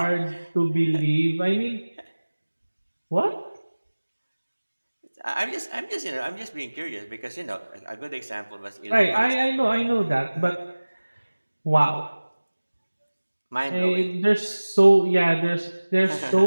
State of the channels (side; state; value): both; inverted; correlation -1.00